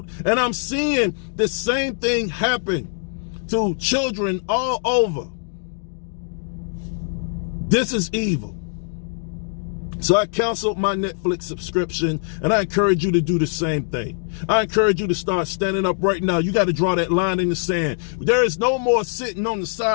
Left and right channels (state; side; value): silent; right; 63 dB below the other